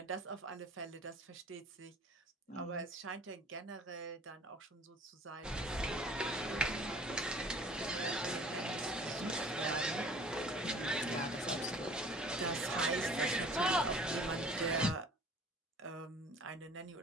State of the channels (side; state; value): both; normal; correlation 0.50